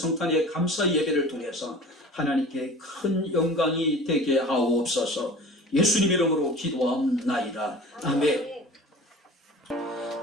감사 예배를 통해서 하나님께 큰 영광이 되게 하옵소서. 예수님 이름으로 기도하옵나이다. 아멘.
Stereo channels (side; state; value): both; normal; correlation 0.40